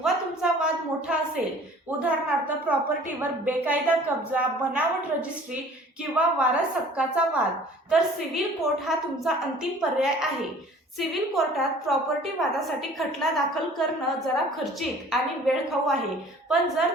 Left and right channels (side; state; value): both; normal; correlation 0.49